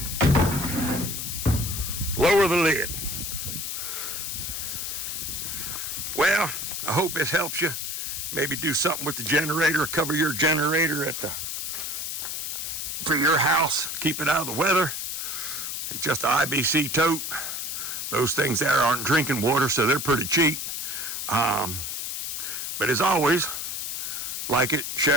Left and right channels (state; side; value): noise; left; hiss, 4 dB below the sound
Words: lower the lid. Well, I hope this helps you. Maybe do something with the generator, cover your generator for your house, keep it out of the weather. It's just an IBC tote. Those things there aren't drinking water, so they're pretty cheap. But as always, like it,